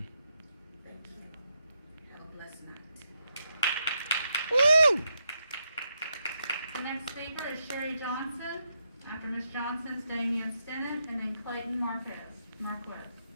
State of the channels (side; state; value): both; inverted; correlation -0.83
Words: Thank you. Have a blessed night. Woo! The next speaker is Sherry Johnson. After Ms. Johnson's Damian Stennett, and then Clayton Marquez.